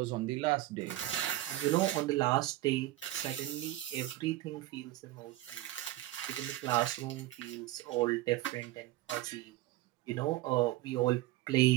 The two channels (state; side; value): quieter; left; 16.1 dB